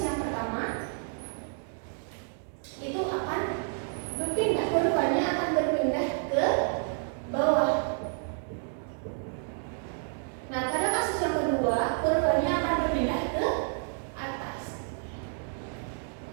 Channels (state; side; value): silent; left; 58 dB below the other